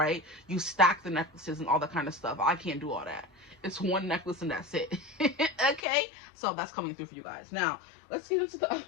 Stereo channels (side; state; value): right; drops out; at 5.9 s